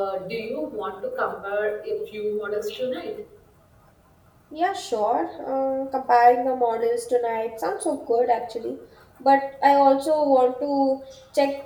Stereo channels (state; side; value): identical; both; correlation 1.00